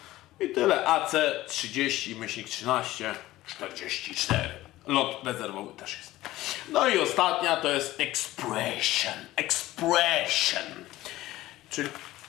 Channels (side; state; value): right; quieter; 16.4 dB